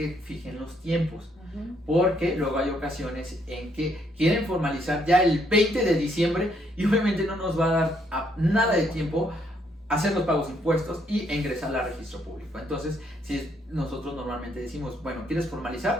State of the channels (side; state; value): both; normal; correlation 0.71